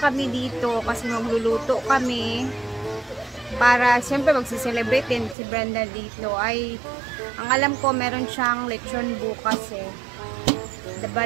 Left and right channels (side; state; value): left; drops out; at 5.4 s